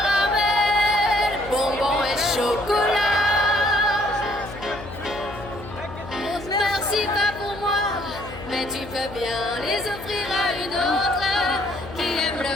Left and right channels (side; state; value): left; noise; hum, 14 dB below the sound